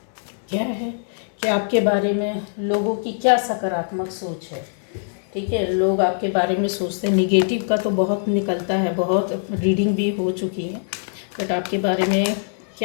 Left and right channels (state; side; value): silent; right; digital silence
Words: क्या है कि आपके बारे में लोगों की क्या सकारात्मक सोच है। ठीक है, लोग आपके बारे में सोचते हैं, निगेटिव का तो बहुत निकलता है, बहुत रीडिंग भी हो चुकी है, बट आपके बारे में